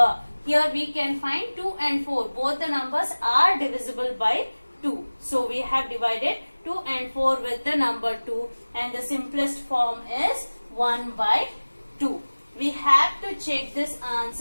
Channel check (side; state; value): both; inverted; correlation -1.00